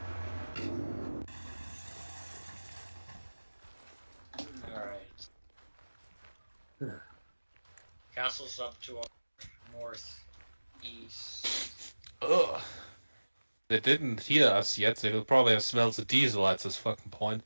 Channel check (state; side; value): inverted; both; correlation -1.00